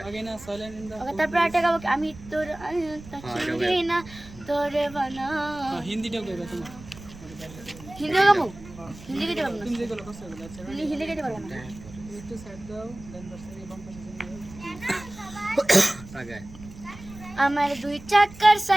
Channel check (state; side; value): noise; right; rumble, 17 dB below the sound